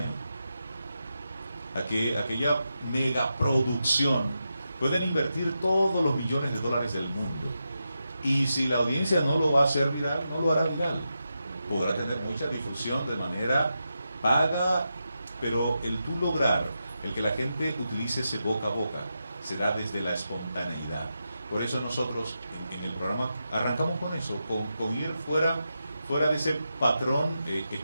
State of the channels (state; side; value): inverted; both; correlation -0.88